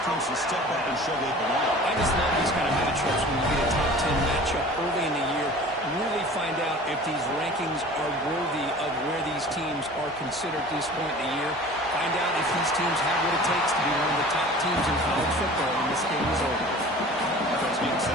teams to step up and show they belong. I just love these kind of matchups when you get a top 10 matchup early in the year. Really find out if these rankings are worthy of where these teams are considered at this point in the year. Find out if these teams have what it takes to be one of the top teams in college football when this game is over. Offense being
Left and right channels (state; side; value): normal; both; correlation 0.43